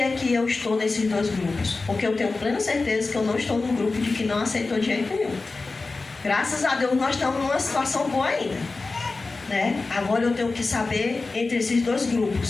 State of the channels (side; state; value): right; quieter; 3.7 dB